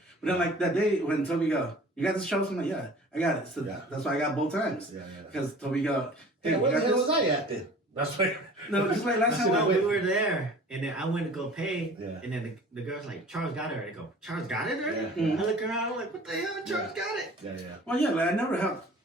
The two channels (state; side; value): normal; both; correlation 0.45